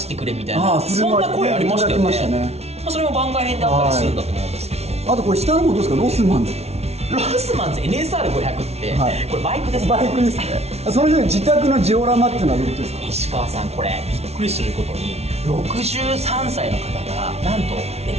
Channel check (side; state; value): left; late; 0.31 ms